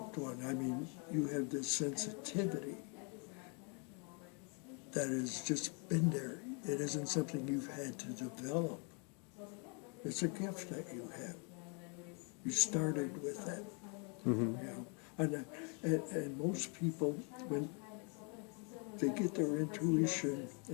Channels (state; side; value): quieter; right; 36.3 dB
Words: one. I mean, you have this sensitivity that has just been there. It isn't something you've had to develop. It's a gift that you have. You started with that. Mm-hmm. You know? And most people, when they get their intuition